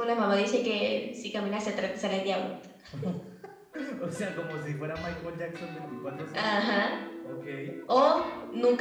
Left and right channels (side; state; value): both; identical; correlation 1.00